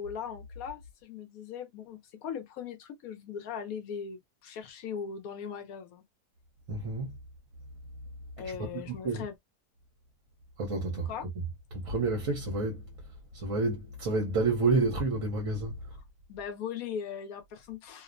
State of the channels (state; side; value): normal; both; correlation 0.01